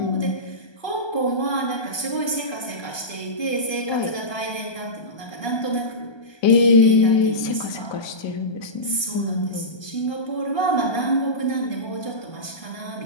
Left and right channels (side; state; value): right; late; 1.2 ms